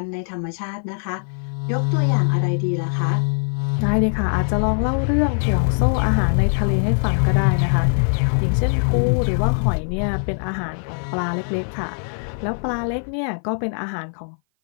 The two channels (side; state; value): right; silent; 56 dB below the other